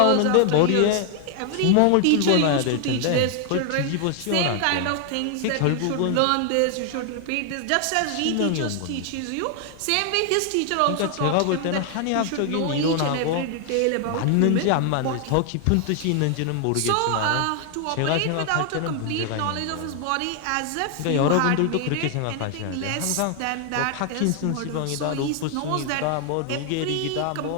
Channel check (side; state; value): both; different; correlation 0.00